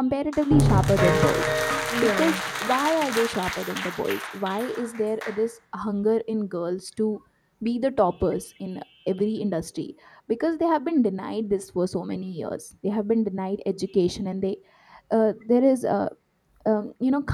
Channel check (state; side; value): identical; both; correlation 1.00